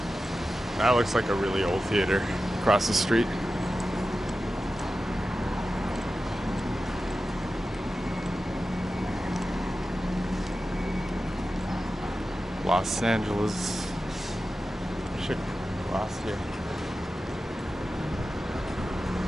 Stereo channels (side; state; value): both; normal; correlation 0.93